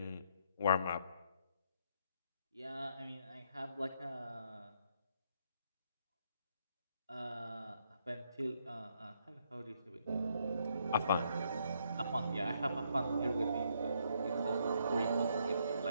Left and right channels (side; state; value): both; inverted; correlation -0.73